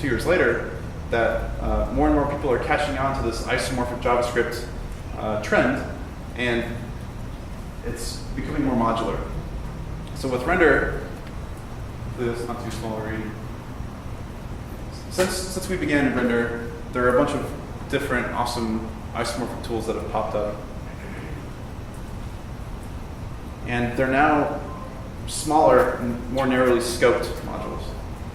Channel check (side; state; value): both; identical; correlation 1.00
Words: years later, that more and more people are catching on to this isomorphic JavaScript trend, and it's becoming more modular. So with Rendr, it's not too small to read. Since we began in Rendr, there are a bunch of different awesome isomorphic tools that have popped up. And they're now smaller and more narrowly scoped modules